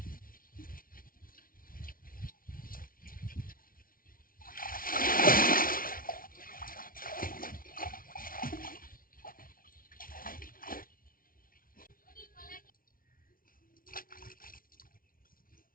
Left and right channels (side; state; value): right; late; 0.42 ms